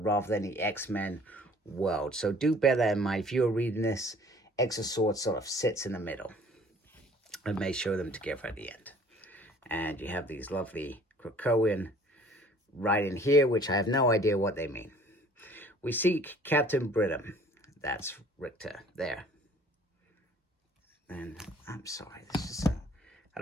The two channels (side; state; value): both; normal; correlation 0.53